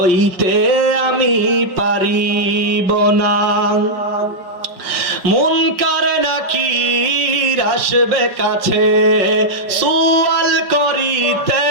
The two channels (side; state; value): left; late; 5.3 ms